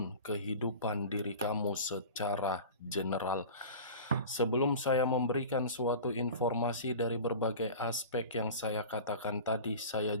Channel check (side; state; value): both; inverted; correlation -0.36